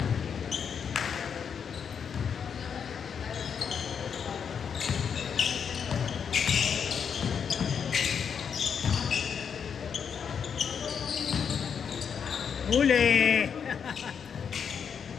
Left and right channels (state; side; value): quieter; right; 7.1 dB